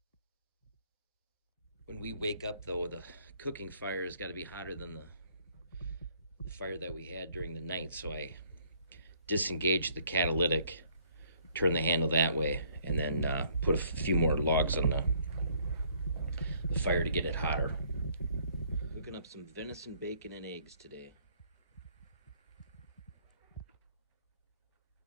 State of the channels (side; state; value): both; inverted; correlation -0.63